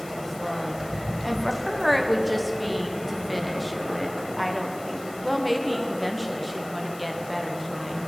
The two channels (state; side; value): noise; left; hiss, 18 dB below the sound